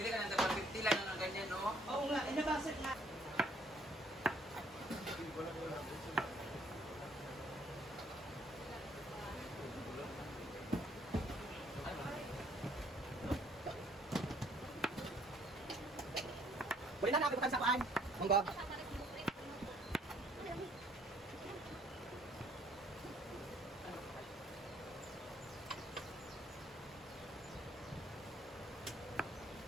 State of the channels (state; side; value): normal; both; correlation 0.63